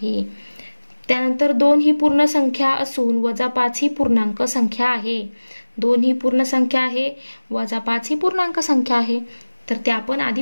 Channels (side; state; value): both; inverted; correlation -1.00